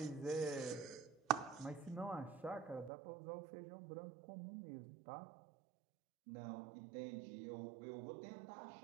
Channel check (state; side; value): drops out; left; at 2.9 s